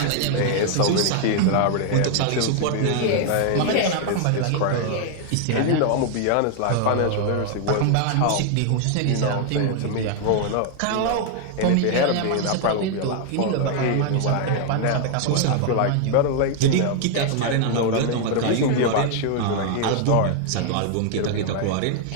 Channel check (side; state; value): both; different; correlation 0.00